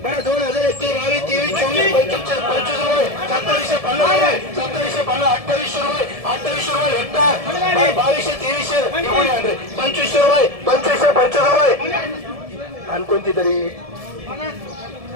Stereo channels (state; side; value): late; left; 1.7 ms